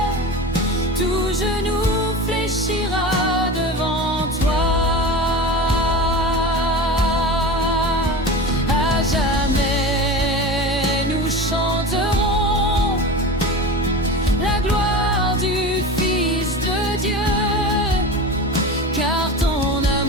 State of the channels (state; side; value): normal; both; correlation 0.29